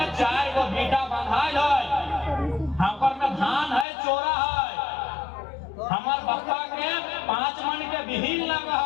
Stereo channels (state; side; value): drops out; right; at 3.9 s